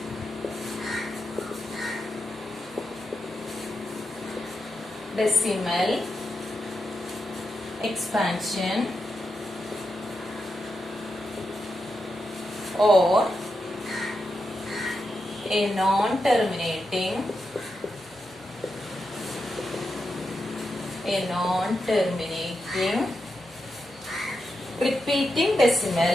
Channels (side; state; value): both; normal; correlation 0.86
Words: decimal expansion or a non-terminating repeating